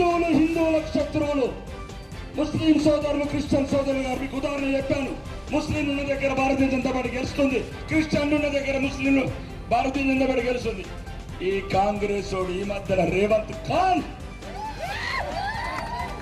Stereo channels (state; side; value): identical; both; correlation 1.00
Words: శత్రువులు. ముస్లిం సోదరులు, క్రిస్టియన్ సోదరులు గారు మీకు ఉదాహరణ చెప్పాను. ముస్లింలు ఉన్న దగ్గర భారతీయ జనతా పార్టీ గెలుస్తుంది, క్రిస్టియన్లు ఉన్న దగ్గర ముస్లింలు భారతీయ జనతా పార్టీ గెలుస్తుంది. ఈ కాంగ్రెస్ వాడు ఈ మధ్యన రేవంత్ ఖాన్